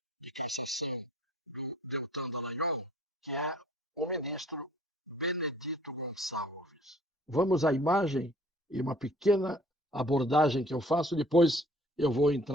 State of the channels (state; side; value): normal; both; correlation 0.55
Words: cassação do Deltan Dallagnol, que é o ministro Benedito Gonçalves. Vamos à imagem e uma pequena abordagem que eu faço, depois eu vou